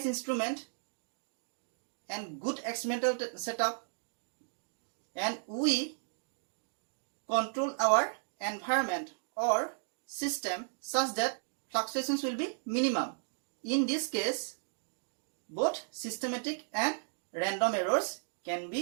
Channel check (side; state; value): left; silent; digital silence